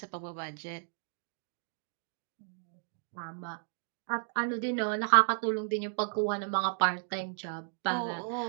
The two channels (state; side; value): silent; left; digital silence